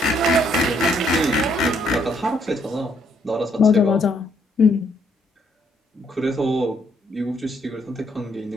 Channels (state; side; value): normal; both; correlation 0.70